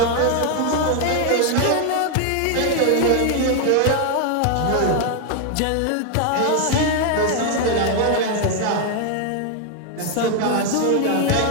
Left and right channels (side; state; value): both; different; correlation 0.00